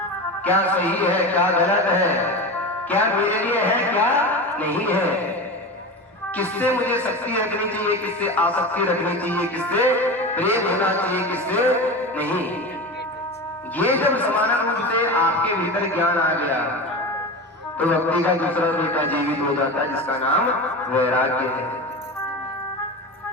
क्या सही है, क्या गलत है, क्या मेरे लिए है, क्या नहीं है, किससे मुझे शक्ति रखनी चाहिए, किससे आसक्ति रखनी चाहिए, किससे प्रेम होना चाहिए, किससे नहीं। ये जब समान रूप से आपके भीतर ज्ञान आ गया तो व्यक्ति का दूसरा बेटा जीवित हो जाता है, जिसका नाम वैराग्य है।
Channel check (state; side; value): normal; both; correlation 0.26